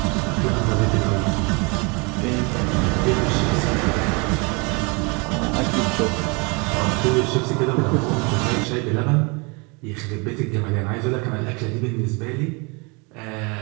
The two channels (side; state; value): left; quieter; 29.9 dB